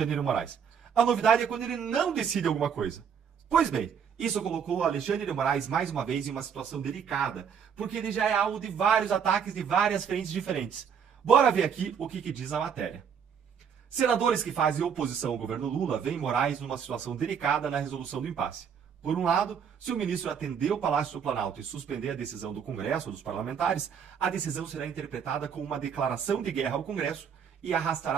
de Moraes. A novidade é quando ele não decide alguma coisa. Pois bem, isso colocou o Alexandre de Moraes mais uma vez em uma situação delicada, porque ele já é alvo de vários ataques de várias frentes diferentes. Bora ver aqui o que diz a matéria. Senadores que fazem oposição ao governo Lula veem Moraes numa situação delicada na resolução do impasse. Por um lado, se o ministro atender o Palácio do Planalto e suspender a decisão do Congresso ou dos parlamentares, a decisão será interpretada como uma declaração de guerra ao Congresso e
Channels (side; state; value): left; quieter; 7.4 dB